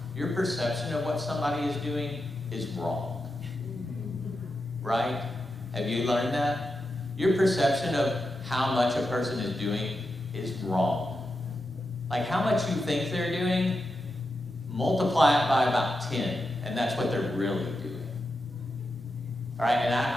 Your perception of what somebody is doing is wrong. Right? Have you learned that? Your perception of how much a person is doing is wrong. Like how much you think they're doing, multiply it by about 10, and that's what they're really doing. All right, and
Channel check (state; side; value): normal; both; correlation 0.88